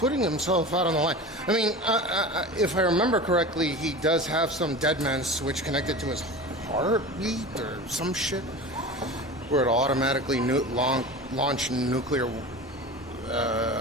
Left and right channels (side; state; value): both; normal; correlation 0.32